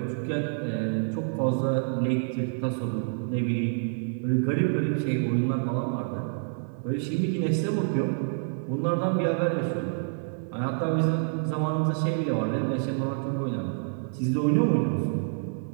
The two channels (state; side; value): silent; left; digital silence